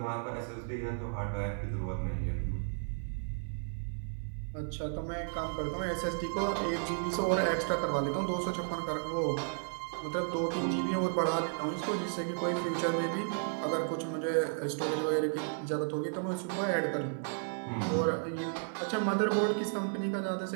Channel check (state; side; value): silent; left; 55 dB below the other